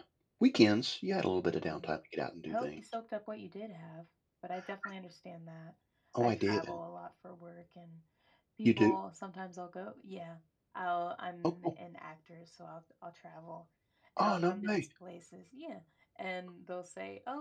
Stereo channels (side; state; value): both; identical; correlation 1.00